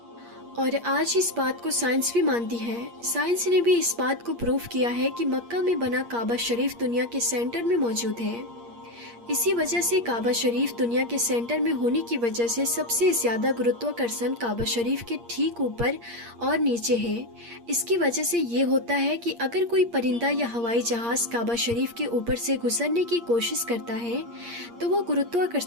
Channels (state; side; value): late; left; 8.6 ms